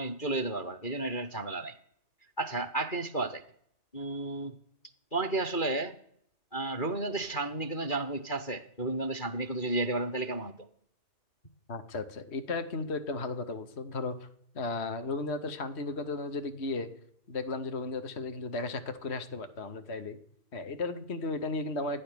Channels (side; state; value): right; late; 2.4 ms